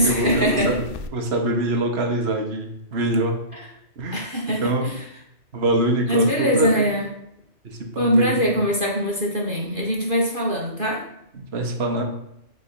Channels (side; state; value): left; late; 2.5 ms